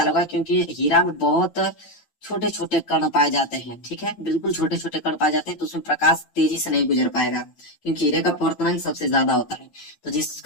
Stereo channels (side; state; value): right; late; 9.0 ms